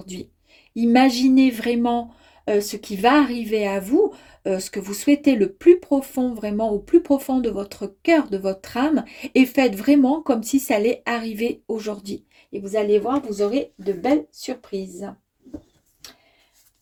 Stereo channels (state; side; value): identical; both; correlation 1.00